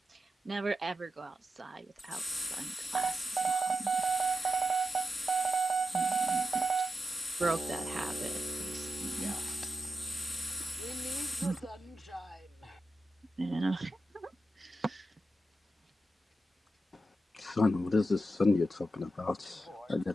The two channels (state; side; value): normal; both; correlation 0.88